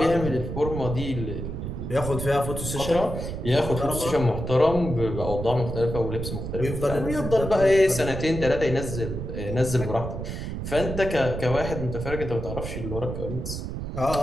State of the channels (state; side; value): noise; right; rumble, 6 dB below the sound